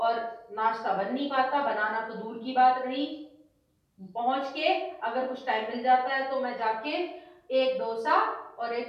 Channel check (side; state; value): both; identical; correlation 1.00